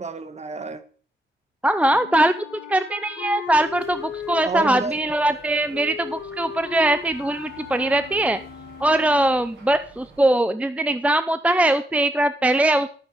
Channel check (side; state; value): both; normal; correlation 0.79